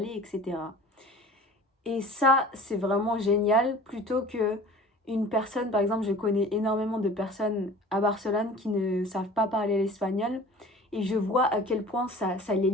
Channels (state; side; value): normal; both; correlation 0.43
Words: etc. Et ça, c'est vraiment génial, plutôt que une personne, par exemple, je connais énormément de personnes à Barcelone qui ne savent pas parler l'espagnol. Et je vois à quel point ça les